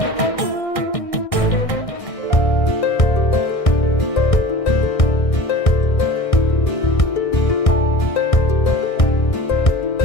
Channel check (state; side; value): late; right; 1.6 ms